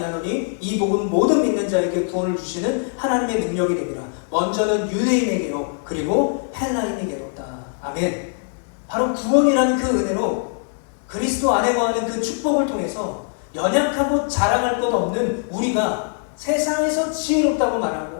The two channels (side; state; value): right; silent; 57 dB below the other